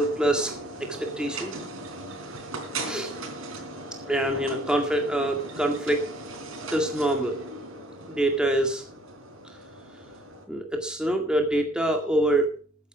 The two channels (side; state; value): both; normal; correlation 0.60